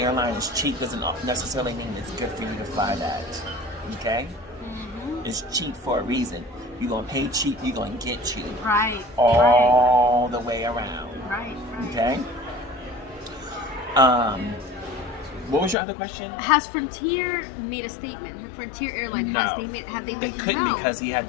is cheap doesn't necessarily mean it's good for you to fly that. Okay? Mm-hmm. It's cheap for a reason. You're going to pay cheap, you're going to get cheap. Right. All the way around. Right. Okay? What was your other question? Has Frontier made a statement? Frontier Airlines, No. have they They couldn't no. because he had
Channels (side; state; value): right; drops out; at 15.8 s